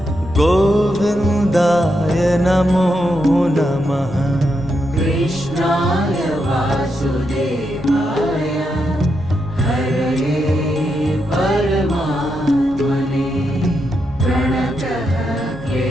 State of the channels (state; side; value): noise; right; hum, 21 dB below the sound